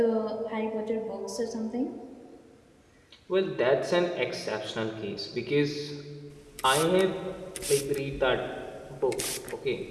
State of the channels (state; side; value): identical; both; correlation 1.00